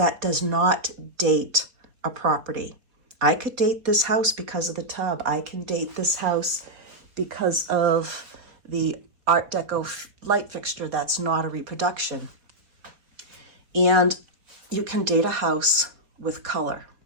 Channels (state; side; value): late; left; 4.2 ms